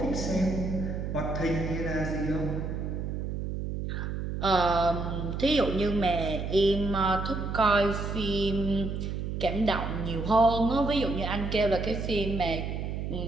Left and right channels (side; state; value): right; noise; hum, 4 dB below the sound